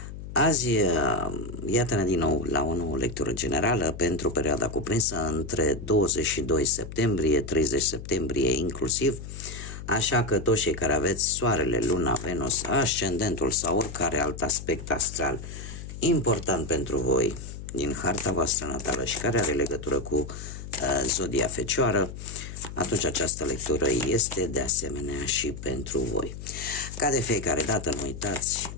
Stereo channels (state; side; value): noise; left; hum, 10 dB below the sound